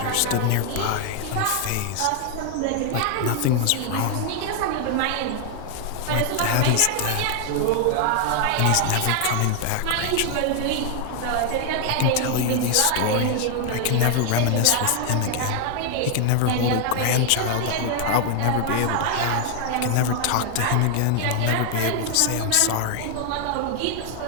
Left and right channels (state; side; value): different; both; correlation 0.00